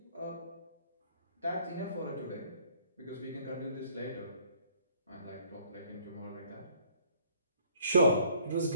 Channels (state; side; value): inverted; both; correlation -0.60